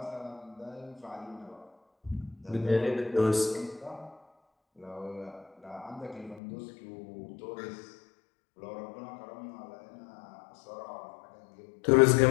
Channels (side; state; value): right; drops out; at 6.4 s